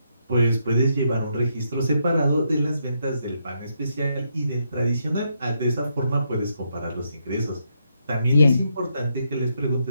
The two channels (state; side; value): inverted; both; correlation -0.79